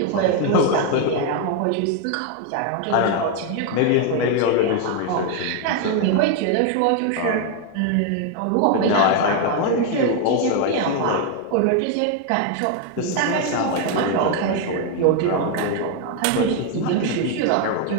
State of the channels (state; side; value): different; both; correlation 0.01